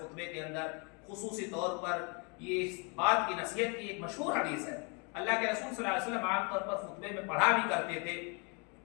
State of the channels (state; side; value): quieter; right; 33.6 dB